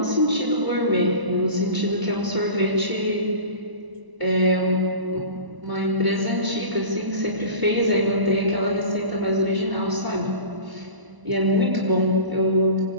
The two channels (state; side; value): late; left; 1.0 ms